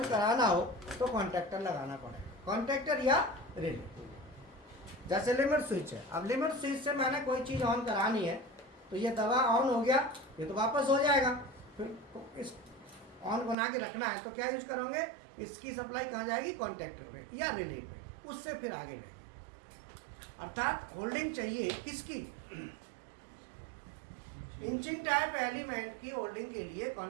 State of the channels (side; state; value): left; drops out; at 13.6 s